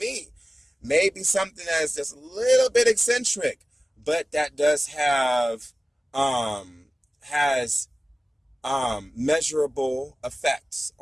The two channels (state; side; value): normal; both; correlation 0.96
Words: Maybe something that's just a little bit eccentric, but that does have, measurable effects